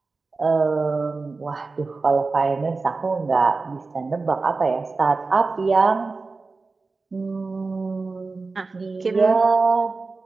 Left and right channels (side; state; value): left; quieter; 3.9 dB